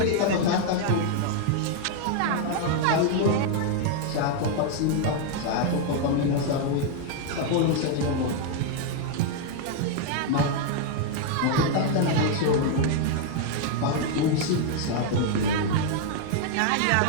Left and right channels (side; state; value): both; different; correlation 0.00